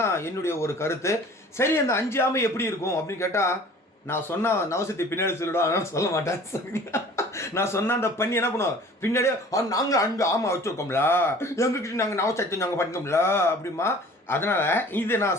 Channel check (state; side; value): normal; both; correlation 0.47